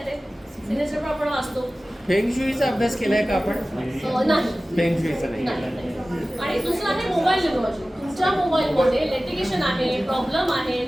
सिग्नेचर पण आपण वाचतो. फेंगशुईचा अभ्यास केलाय का आपण? नाही. फेंगशुईचा नाही केलाय. आणि दुसरं आहे मोबाईल न्यूमॉलॉजी. तुमच्या मोबाईलमध्ये लिटिगेशन आहे, प्रॉब्लेम आहे,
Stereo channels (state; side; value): normal; both; correlation 0.97